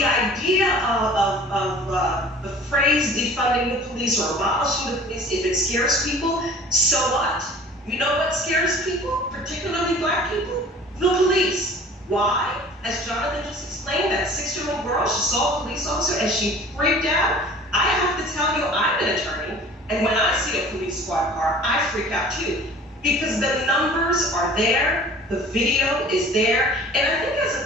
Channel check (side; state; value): both; normal; correlation 0.46